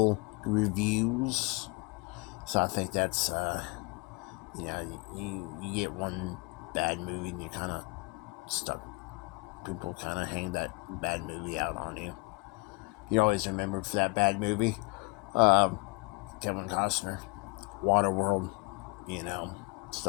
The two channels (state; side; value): quieter; right; 27.8 dB